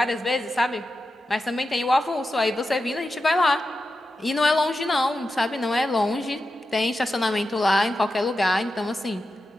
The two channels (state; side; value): normal; both; correlation 0.90